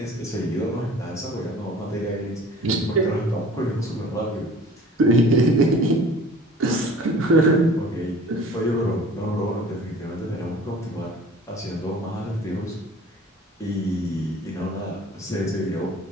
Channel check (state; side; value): normal; both; correlation 0.46